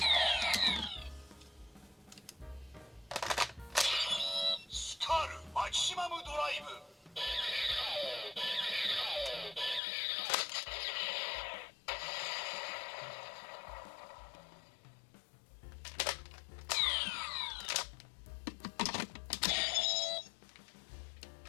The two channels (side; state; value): right; drops out; at 9.8 s